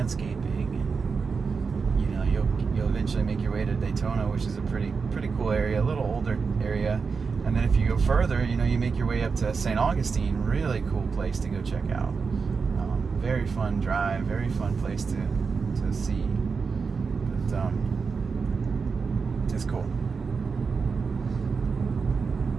and, you know, you'll eventually make your way to Daytona, which is a pretty cool area, a little older area. And then if you go further, you know, you make your way up to St. Augustine, really cool place to go check out. Very fun drive, very fun place to see. But It's cool.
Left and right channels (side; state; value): left; quieter; 5.1 dB